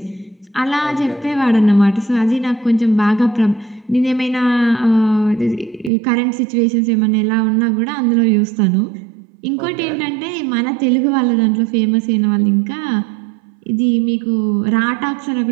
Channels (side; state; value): left; drops out; at 5.9 s